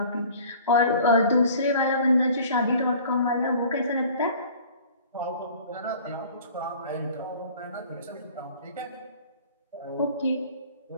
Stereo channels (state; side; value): inverted; both; correlation -0.47